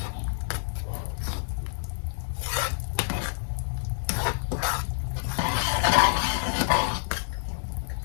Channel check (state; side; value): silent; right; 60 dB below the other